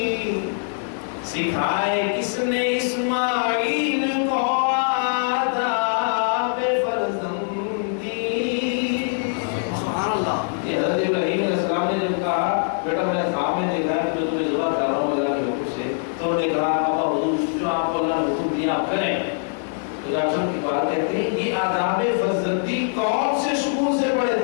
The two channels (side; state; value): right; silent; digital silence